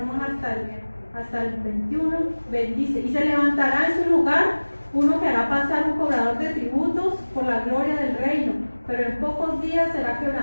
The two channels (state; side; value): inverted; both; correlation -1.00